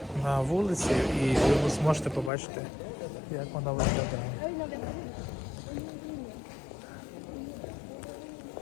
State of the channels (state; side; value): drops out; right; at 2.3 s